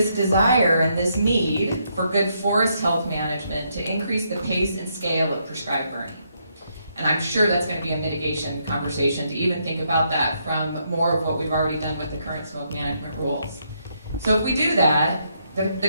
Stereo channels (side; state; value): both; inverted; correlation -0.76